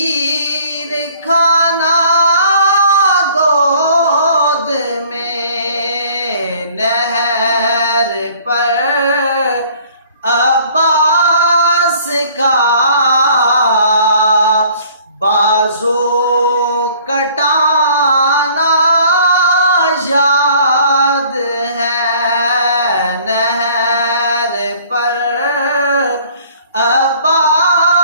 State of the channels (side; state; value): both; inverted; correlation -0.55